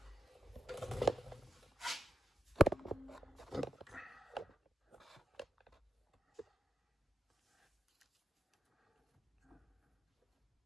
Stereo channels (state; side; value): normal; both; correlation 0.85